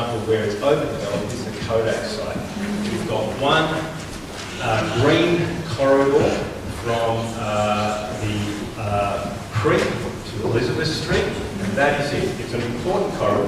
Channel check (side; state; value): both; identical; correlation 1.00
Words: where it's overdeveloped is the Kodak site. We've got one green corridor from the Creek to Elizabeth Street, and that is it. It's an important